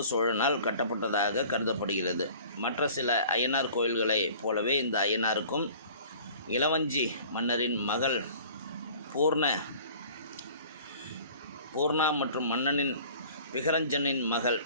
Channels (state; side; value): inverted; both; correlation -0.47